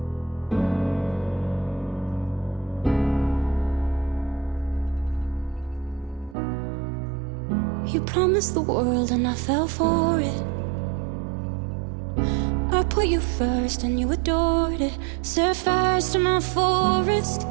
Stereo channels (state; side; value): drops out; left; at 6.4 s